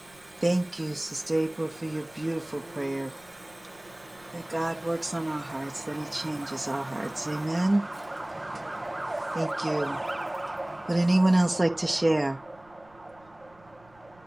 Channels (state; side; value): noise; right; rumble, 28 dB below the sound